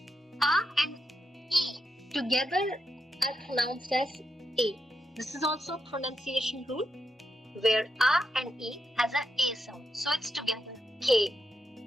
A and E together are pronounced as A. This is also a pronunciation rule where A and E has an A sound. So it's together. K.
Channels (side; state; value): both; normal; correlation 0.84